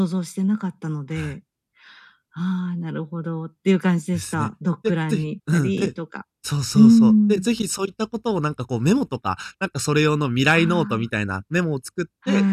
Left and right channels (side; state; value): both; identical; correlation 1.00